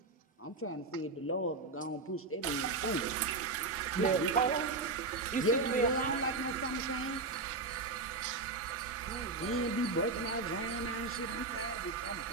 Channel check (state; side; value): quieter; left; 3.6 dB